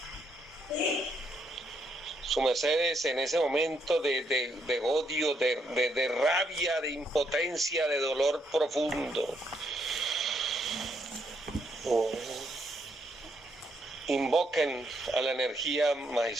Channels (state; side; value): normal; both; correlation 0.75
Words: Su mercedes en ese momento de odio, de rabia, de impotencia, de dolor profundo. Invoquen a la energía